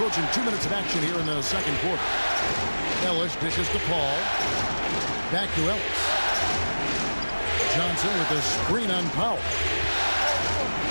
2 minutes of action here in the second quarter. Ellis dishes to Paul. Back to Ellis. Johnson with a screen on Powell.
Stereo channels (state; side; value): inverted; both; correlation -1.00